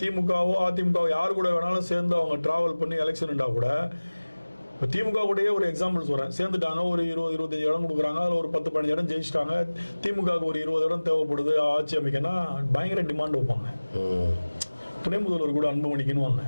அதிமுகவோ யாரு கூட வேணாலும் சேர்ந்து அவங்க டிராவல் பண்ணி எலெக்ஷன்டா கூட இப்போ திமுக கூடயே ஒரு எக்ஸாம்பிள் சொல்கிறேன், சேர்ந்துட்டாங்க, ஒரு 20-25 இடம் கொடுக்குறாங்க, அதில் ஒரு 10-15 இடம் ஜெயிச்சிட்டாங்க, திமுகவுக்கு ஒரு 20 இடம் தேவைப்படுது ஆட்சி அமைக்கன்னா பயங்கர டிமாண்ட் வைப்பாங்க. துணை முதல்வர் கூட அன்புமணிக்குன்னு வாங்க,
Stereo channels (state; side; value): inverted; both; correlation -1.00